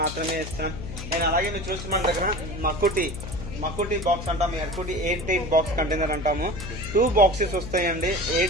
మాత్రమే ఇస్తాం. అండ్ అలాగే మీరు చూస్తే మన దగ్గర మకుటి బాక్స్ అంటాము. ఎర్కుటి 8 బాక్స్ కంటైనర్ అంటాము. 2 బాక్సెస్ వస్తాయండి.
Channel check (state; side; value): noise; left; hum, 9 dB below the sound